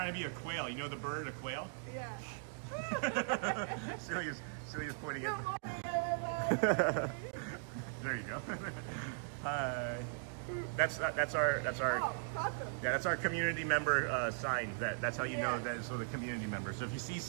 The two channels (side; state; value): left; silent; digital silence